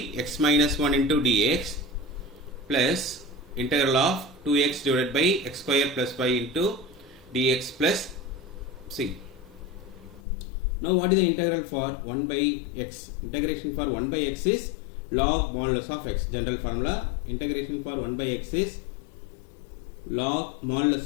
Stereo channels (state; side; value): drops out; right; at 10.2 s